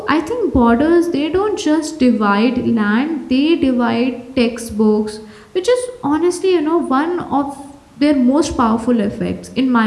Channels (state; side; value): identical; both; correlation 1.00